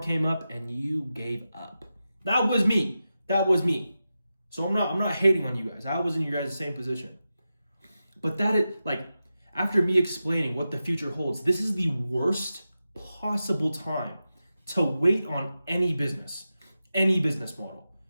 came up and you gave up. That was me. So I'm not hating on you guys. I was in your guys' same position. But that is, like, after me explaining what the future holds, this is the worst possible time to wait on any business model.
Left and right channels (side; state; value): both; inverted; correlation -0.92